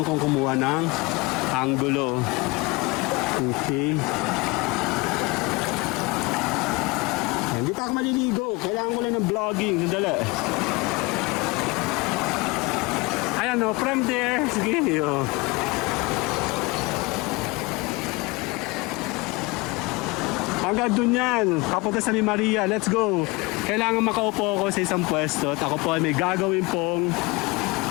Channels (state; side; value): quieter; right; 24.7 dB